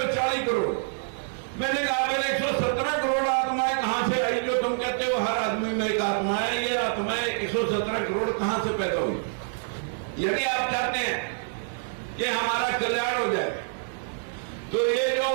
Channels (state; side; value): silent; left; 60 dB below the other